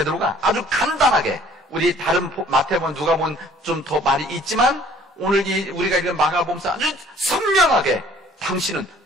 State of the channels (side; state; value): both; normal; correlation 0.55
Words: 아주 간단하게 우리 다른 마태복음, 누가복음 좀 더 말이 있지만 오늘 우리가 읽은 마가복음서 아주 선명하게 당신은